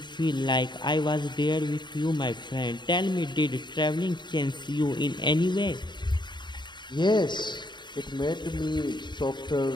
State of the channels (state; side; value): late; right; 0.22 ms